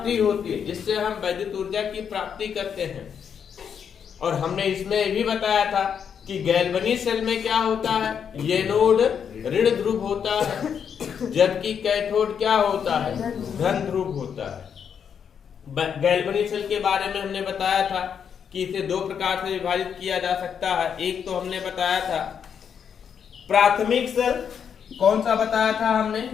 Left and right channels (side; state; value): right; quieter; 7.5 dB